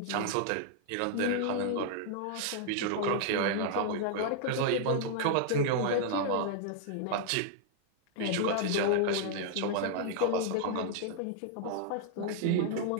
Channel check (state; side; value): different; both; correlation 0.00